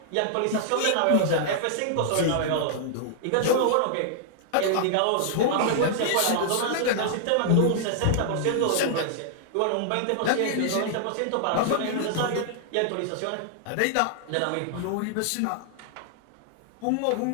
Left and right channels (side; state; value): both; different; correlation -0.01